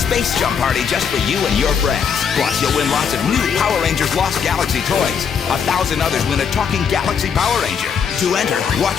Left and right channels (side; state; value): right; quieter; 6.9 dB